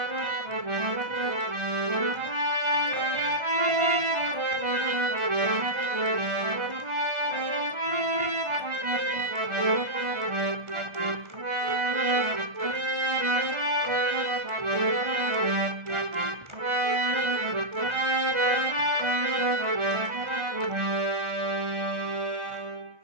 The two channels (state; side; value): late; left; 1.3 ms